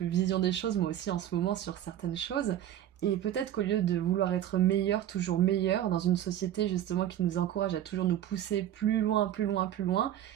vision des choses, moi aussi en ce moment, sur certaines choses. Et peut-être qu'au lieu de vouloir être meilleur, toujours meilleur, dans une société justement qui nous encourage à toujours nous pousser plus loin, plus loin, plus loin,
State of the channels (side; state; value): left; quieter; 11.6 dB